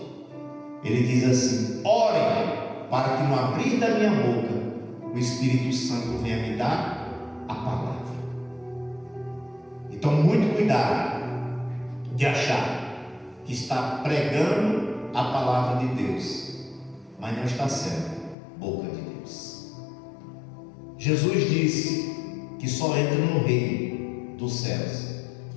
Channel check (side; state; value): right; drops out; at 18.4 s